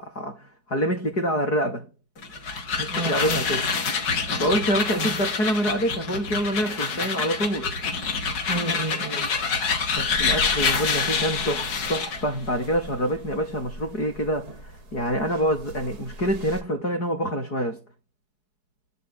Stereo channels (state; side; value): late; right; 4.7 ms